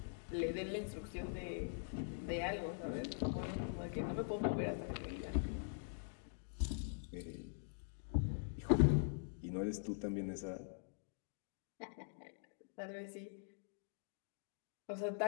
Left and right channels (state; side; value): silent; right; digital silence